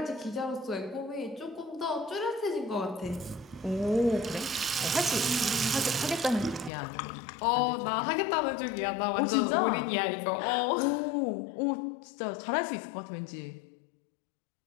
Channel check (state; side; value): drops out; right; at 6.7 s